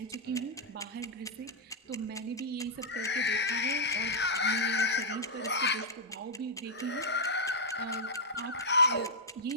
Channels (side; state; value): both; normal; correlation -0.07